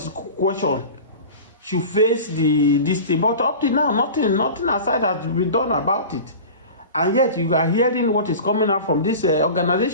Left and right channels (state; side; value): inverted; both; correlation -0.34